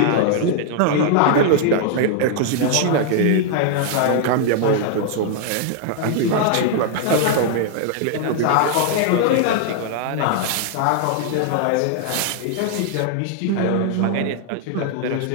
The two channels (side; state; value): both; different; correlation 0.00